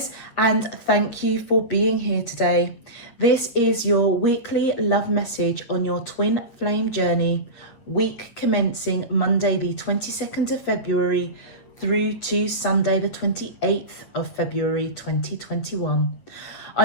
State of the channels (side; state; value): right; late; 8.7 ms